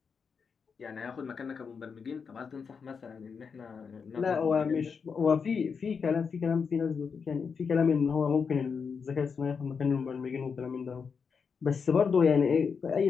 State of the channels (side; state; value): right; quieter; 5.9 dB